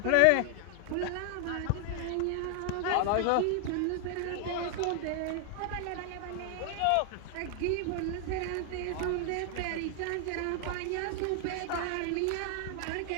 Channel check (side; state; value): both; different; correlation 0.00